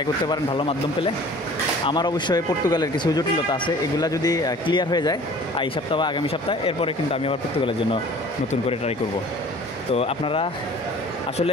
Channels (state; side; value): normal; both; correlation 0.48